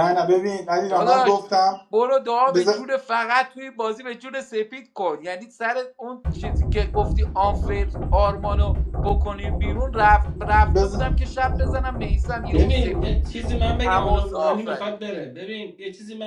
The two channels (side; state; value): both; identical; correlation 1.00